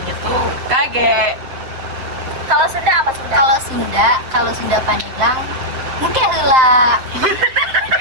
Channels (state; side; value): late; left; 7.7 ms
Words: tuh kage. kalau Sunda apa Sunda? Kalau Sunda Pandeglang mungkin heula.